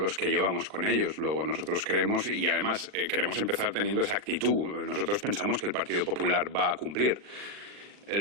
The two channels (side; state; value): left; late; 40 ms